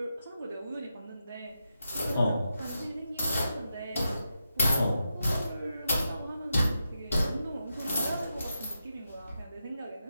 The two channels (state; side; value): inverted; both; correlation -0.87